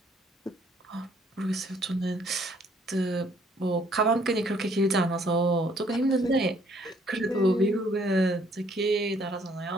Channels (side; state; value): both; normal; correlation 0.64